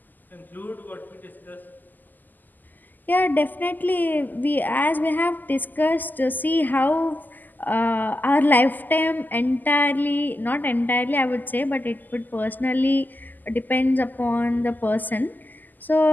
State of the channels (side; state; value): right; late; 0.086 ms